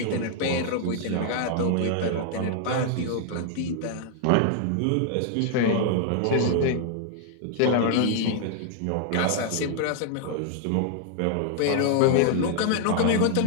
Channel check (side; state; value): both; different; correlation 0.00